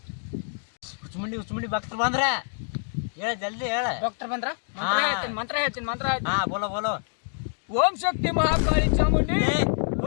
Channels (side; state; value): right; silent; digital silence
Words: ಹುಚ್ಚಮುಂಡಿ ಭಕ್ತರು ಬಂದ್ರ ಹೇಳ, ಜಲ್ದಿ ಹೇಳ. ಡಾಕ್ಟರ್ ಬಂದ್ರ? ಮಂತ್ರ ಹೇಳ್ತೀನಿ. ಹಾ ಬೋಲೋ. ಓಂ ಶಕ್ತಿ ಮಹಾಕಾಳಿ ಚಾಮುಂಡಿ